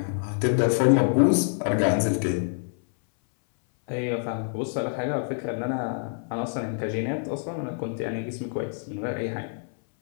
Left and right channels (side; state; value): right; silent; 61 dB below the other